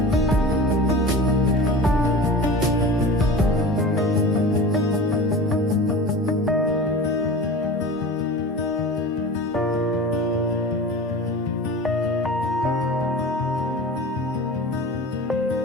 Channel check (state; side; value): normal; both; correlation 0.35